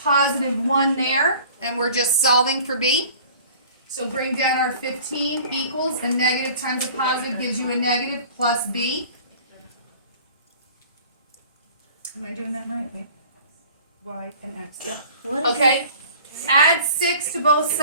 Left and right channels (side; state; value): both; inverted; correlation -0.46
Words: positive 1 there. And we're just solving for b. So bring down our 15 equals a negative times a positive gives you a negative plus b. Am I doing that right? Wait. Y and x, yeah. Okay, add 6 to both